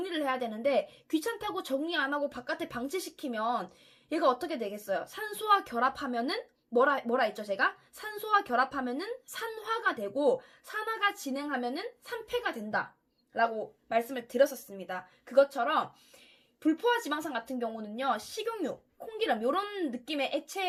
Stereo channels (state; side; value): identical; both; correlation 1.00